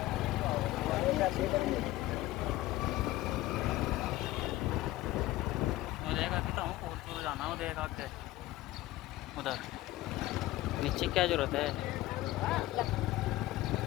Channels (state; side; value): quieter; right; 16.8 dB